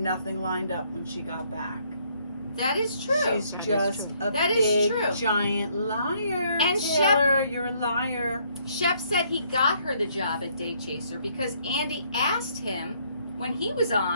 lined up when she got back. That is true. She's just a That is big, true. giant liar. And Taylor, you're a liar. Shep said he got her the job at Day Chaser because Andy asked him when he was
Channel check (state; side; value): inverted; both; correlation -0.67